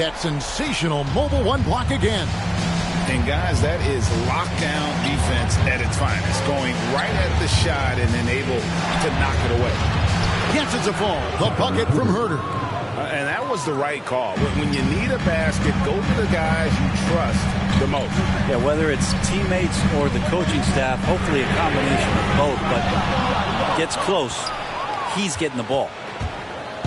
sensational mobile 1 block again. And guys, that is lockdown defense at its finest. Going right at the shot and then able to knock it away. Yes, it's a fall. The bucket from Herter. And that was the right call. When you need a basket, go to the guys you trust the most. Yeah, whether it's teammates or the coaching staff, hopefully a combination of both, but gets close, he's getting the ball.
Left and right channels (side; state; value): both; identical; correlation 1.00